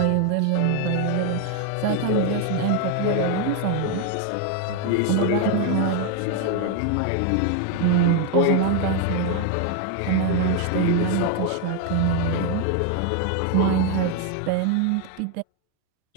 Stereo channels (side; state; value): both; different; correlation 0.01